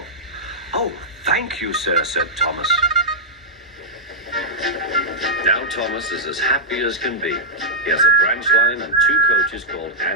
"Oh, thank you, sir," said Thomas. Now Thomas is as happy as can be. He has a branch line and two coaches called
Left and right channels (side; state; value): both; normal; correlation -0.10